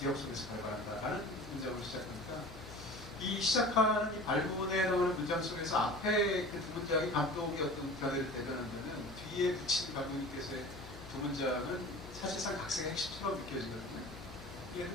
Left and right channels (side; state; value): left; noise; hum, 14 dB below the sound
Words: 속에서 발발한다라는 문장으로 시작합니다. 이 시작하는 이 발문에 나오는 문장 속에서 앞에 그 두 문장이 감독의 어떤 견해를 대변한다면 뒤에 붙인 감독님께서의 두 문장은 사실상 각색의 핵심처럼 느껴지거든요. 예,